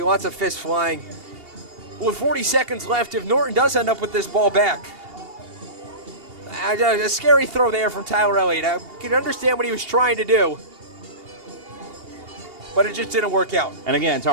lots of fists flying. With 40 seconds left, if Norton does end up with this ball back, a scary throw there from Tyler Elliott. I can understand what he was trying to do, but it just didn't work out. And again,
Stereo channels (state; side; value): late; left; 2.8 ms